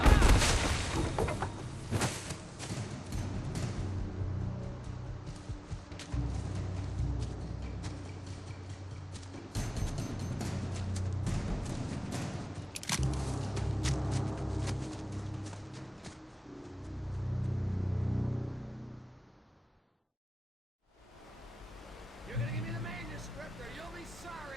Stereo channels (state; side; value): normal; both; correlation 0.98